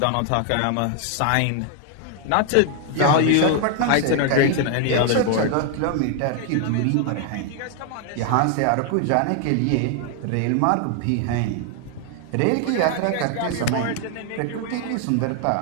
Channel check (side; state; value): both; different; correlation 0.00